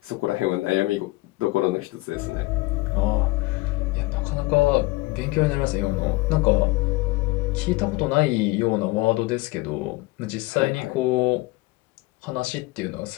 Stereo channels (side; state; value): right; quieter; 21.3 dB